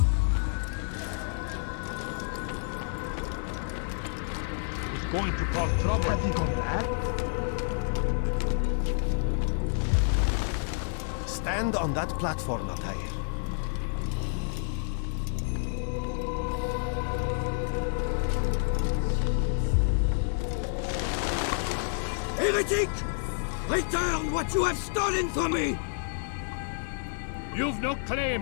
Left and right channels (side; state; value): right; silent; digital silence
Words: It's going to cause trouble. Have you gone mad? Stand on that platform, Altair. Heretic! Return what you have stolen from me! You've no